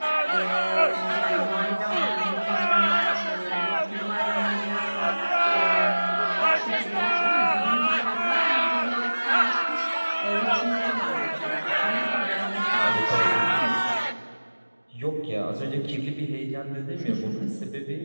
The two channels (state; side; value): inverted; both; correlation -1.00